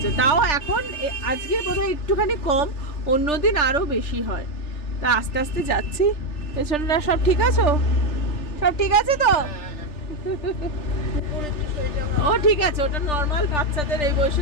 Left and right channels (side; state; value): right; late; 3.4 ms